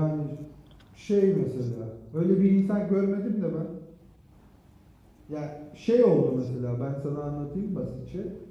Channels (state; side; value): identical; both; correlation 1.00